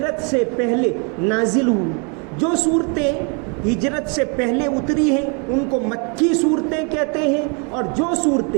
سے پہلے نازل ہوئی. جو صورتیں ہجرت سے پہلے اتری ہیں ان کو مکی صورتیں کہتے ہیں، اور جو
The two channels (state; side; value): quieter; left; 36.0 dB